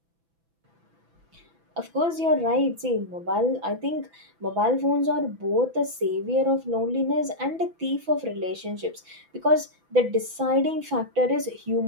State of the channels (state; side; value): late; left; 6.0 ms